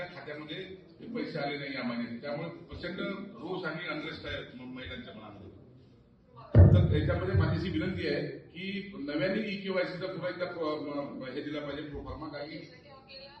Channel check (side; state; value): both; identical; correlation 1.00